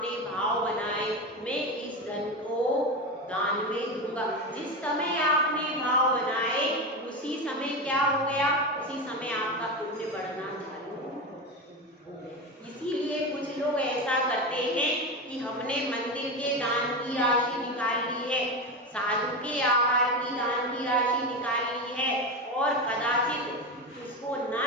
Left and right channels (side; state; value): both; normal; correlation 0.19